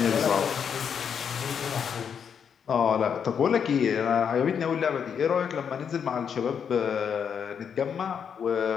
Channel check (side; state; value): right; quieter; 7.4 dB